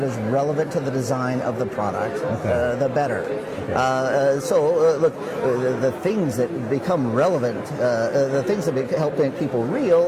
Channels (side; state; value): both; identical; correlation 1.00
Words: is relevant to the design of the product, the better. Look, the things that become relevant, the things that help make people real